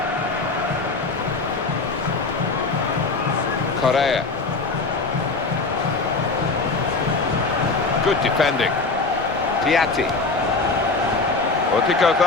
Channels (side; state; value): right; quieter; 3.8 dB